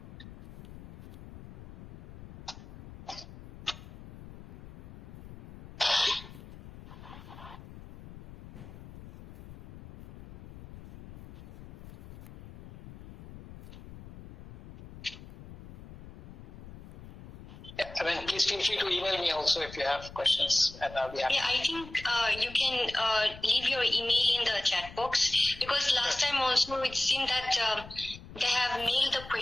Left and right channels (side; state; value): left; noise; rumble, 16 dB below the sound